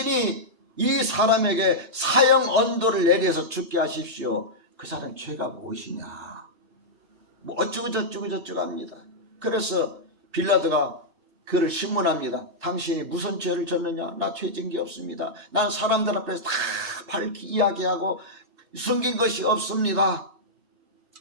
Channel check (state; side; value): late; left; 3.3 ms